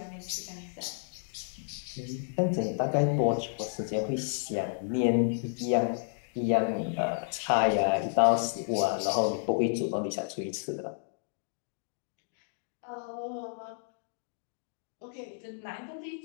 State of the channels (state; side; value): silent; right; digital silence